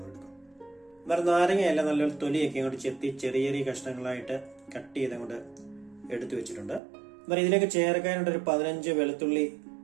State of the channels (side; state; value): left; drops out; at 6.8 s